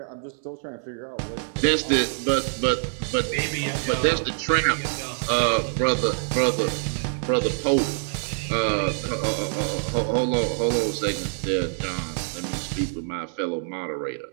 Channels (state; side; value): silent; left; digital silence